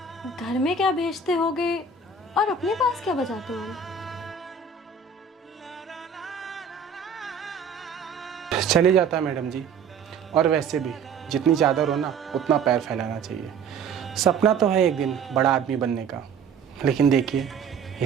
घर में क्या भेजते होगे और अपने पास क्या बचाते होगे? चले जाता है मैडम जी, और वैसे भी जितनी चादर हो ना उतना पैर फैलाना चाहिए। सपना तो है एक दिन बड़ा आदमी बनने का, लेकिन देखिए ये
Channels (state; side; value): quieter; left; 5.5 dB